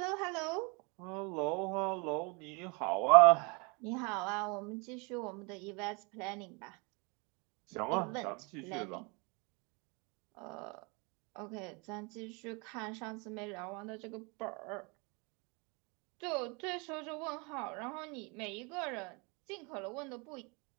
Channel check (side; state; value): left; quieter; 30.7 dB